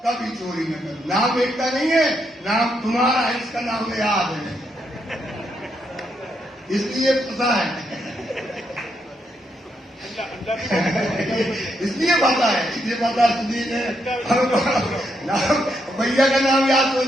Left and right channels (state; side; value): normal; both; correlation 0.79